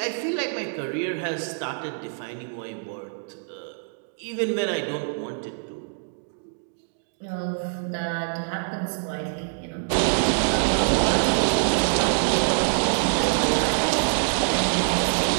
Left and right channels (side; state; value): left; silent; digital silence